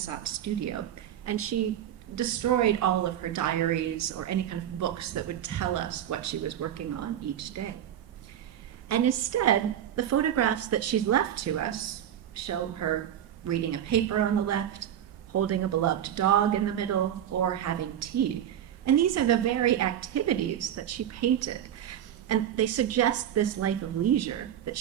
studio, and she destroyed all of her diaries or any kind of books that would tell us what she was working on each day. And instead, the photographs that she's left to us show her reading a paper on the left, holding a beloved dog in the middle, or having tea. And these are the very activities that she painted. And they suggest this life of leisure that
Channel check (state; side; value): quieter; left; 10.5 dB